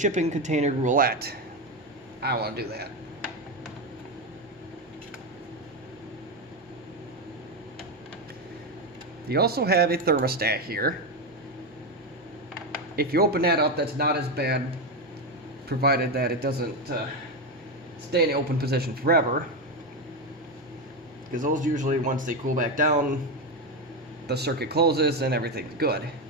container roulette. I don't want to do that. You also have a thermostat here. If you open that up, that's not as bad, provided that it doesn't stay in the open position forever. Because those usually, once they cool back down, the circuit closes and everything's good.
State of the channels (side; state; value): both; normal; correlation 0.11